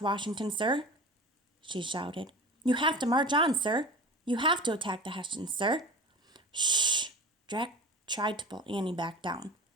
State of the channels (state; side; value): normal; both; correlation 0.36